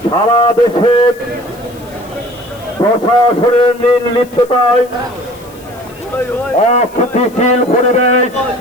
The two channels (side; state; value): left; noise; hiss, 25 dB below the sound